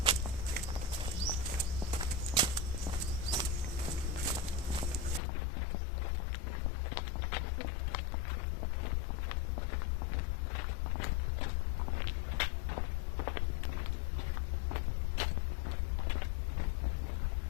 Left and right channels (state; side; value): drops out; right; at 5.2 s